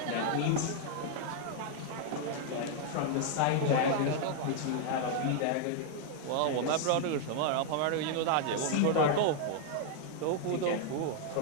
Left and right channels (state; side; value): different; both; correlation 0.00